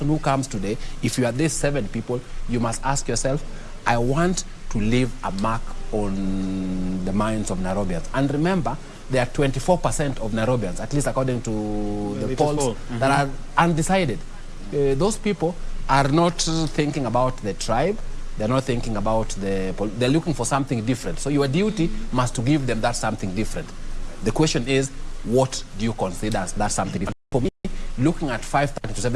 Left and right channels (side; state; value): both; identical; correlation 1.00